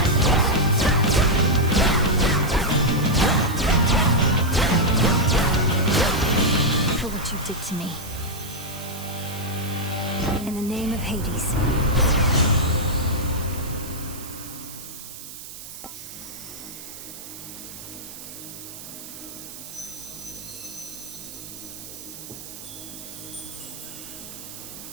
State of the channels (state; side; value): noise; right; hiss, 13 dB below the sound